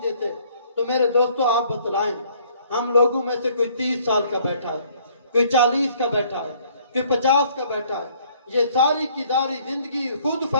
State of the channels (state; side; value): inverted; both; correlation -0.61